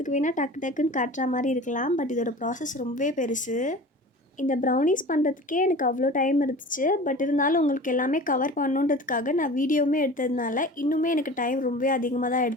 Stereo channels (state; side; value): normal; both; correlation 0.38